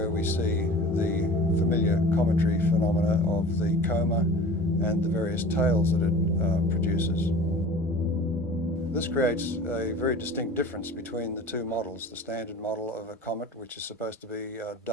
we see the familiar cometary phenomena of the coma and the various tails that it produces. This creates a very distinct difference between the two models, the standard model of a comet, which is supposed to be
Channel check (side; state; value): both; normal; correlation 0.40